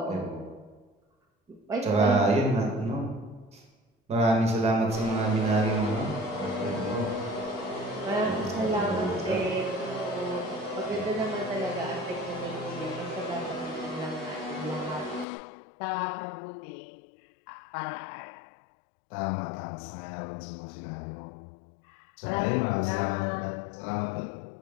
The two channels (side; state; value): right; drops out; at 15.2 s